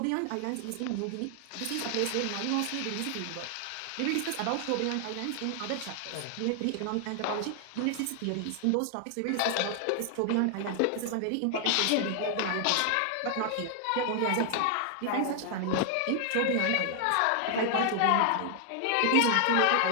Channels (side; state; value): both; different; correlation 0.00